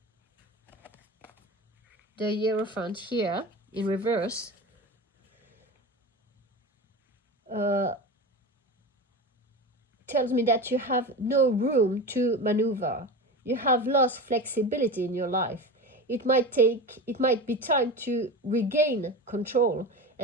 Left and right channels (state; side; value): normal; both; correlation 0.27